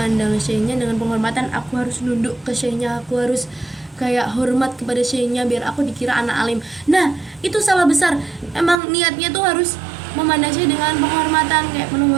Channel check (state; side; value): drops out; left; at 8.8 s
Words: syekhnya dengan penghormatan, aku harus nunduk ke syekhnya, aku harus kayak hormat kepada syekhnya biar aku dikira anak alim. Nah itu salah besar. Emang niatnya tuh harus memandang syekh dengan penghormatan, kayak penuh